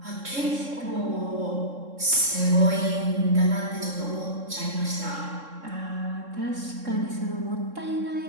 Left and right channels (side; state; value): left; late; 3.7 ms